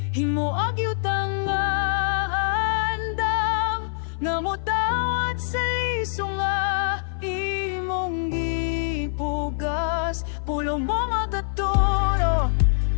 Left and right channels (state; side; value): silent; right; 55 dB below the other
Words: himo agyutang nga andam, nga mo tawat sa lisong nga imong gipugas. Pulong mo